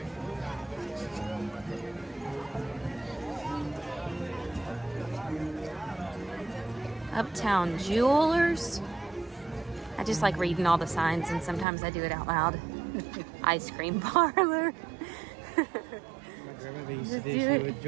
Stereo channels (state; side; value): drops out; left; at 11.7 s